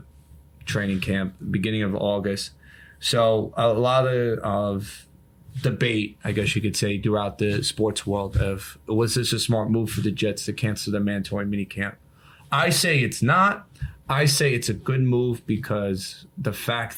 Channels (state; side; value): identical; both; correlation 1.00